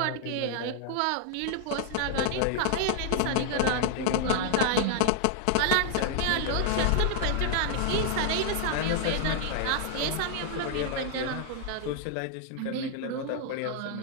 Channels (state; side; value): different; both; correlation 0.00